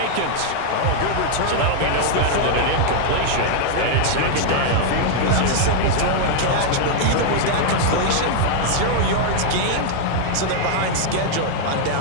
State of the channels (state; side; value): different; both; correlation 0.00